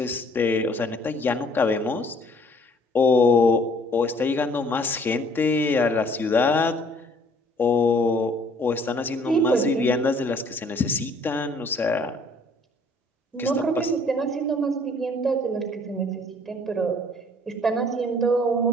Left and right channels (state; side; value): normal; both; correlation 0.58